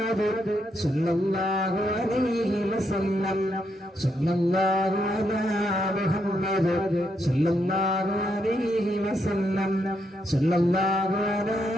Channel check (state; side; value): normal; both; correlation 0.78